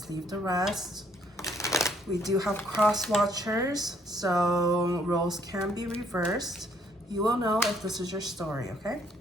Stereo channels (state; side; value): normal; both; correlation 0.66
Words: leave the rest. We do have cross watchers, so roles can be reversed. You will know if this is your story, okay?